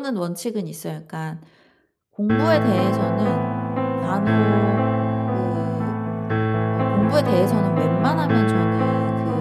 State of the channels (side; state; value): both; identical; correlation 1.00